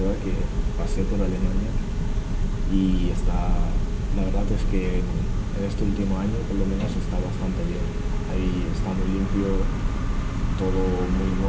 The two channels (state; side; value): identical; both; correlation 1.00